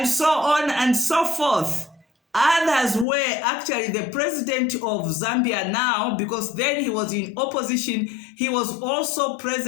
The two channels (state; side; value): drops out; right; at 3.1 s